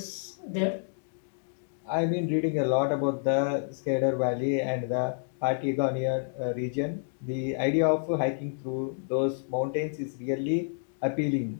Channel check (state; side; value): silent; right; digital silence